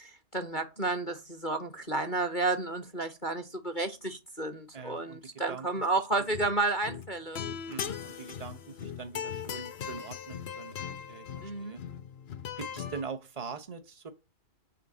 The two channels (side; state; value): right; late; 2.9 ms